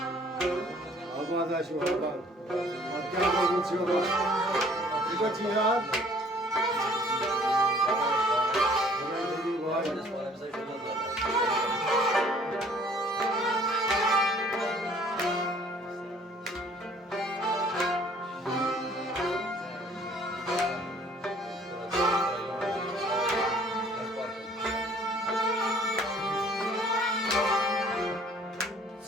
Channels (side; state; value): both; normal; correlation 0.56